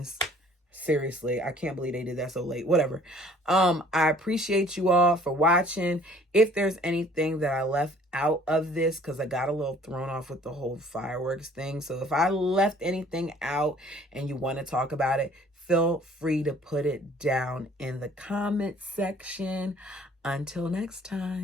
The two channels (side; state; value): both; normal; correlation 0.55